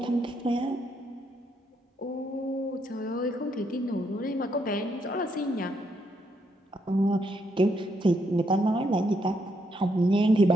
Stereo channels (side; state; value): both; normal; correlation 0.76